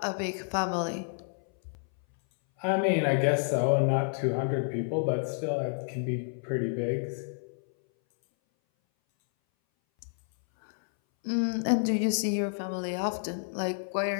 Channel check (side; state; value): right; silent; 58 dB below the other